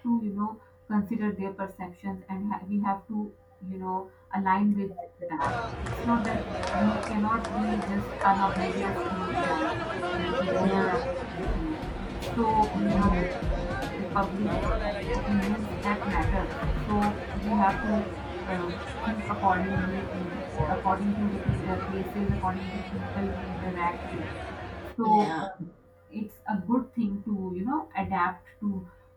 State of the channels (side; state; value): both; identical; correlation 1.00